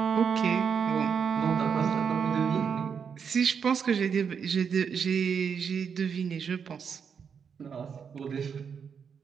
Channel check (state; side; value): quieter; left; 6.7 dB